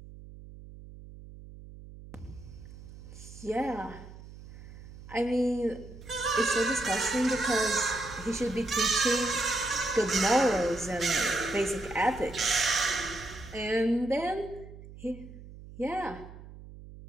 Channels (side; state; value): right; noise; hum, 16 dB below the sound